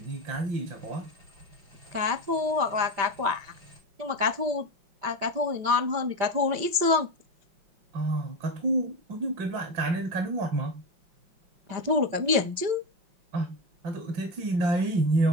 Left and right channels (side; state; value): left; late; 5.1 ms